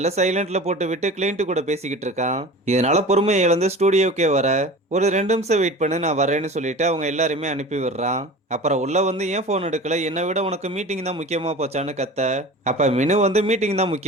சைலண்ட்ல போட்டு விட்டு கிளைண்ட் கூட பேசிக்கிட்டு இருக்கான். இதனால பொறுமையை இழந்து ஸ்டூடியோக்கே வர, ஒரு 2 நிமிஷம் வெயிட் பண்ணு நான் வரேன்னு சொல்லிட்டு அவங்க எல்லாருமே அனுப்பி விடுறான். அப்புறம் உள்ள வந்து ஏன் போன் எடுக்கல, என்னை விட உனக்கு மீட்டிங் தான் முக்கியமா போச்சான்னு கத்த, அப்ப மினு வந்து மீட்டிங் தான்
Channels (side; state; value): both; normal; correlation 0.37